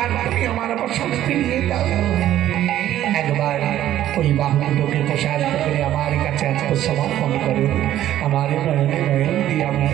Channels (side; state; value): left; quieter; 12.6 dB